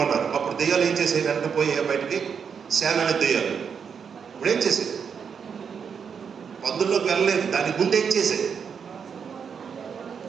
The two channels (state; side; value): quieter; left; 6.7 dB